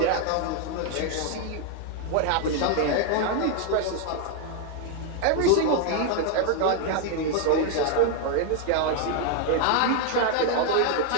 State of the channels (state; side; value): different; both; correlation 0.00